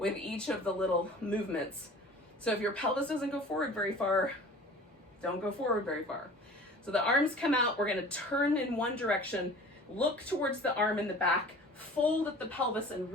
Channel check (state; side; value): normal; both; correlation 0.43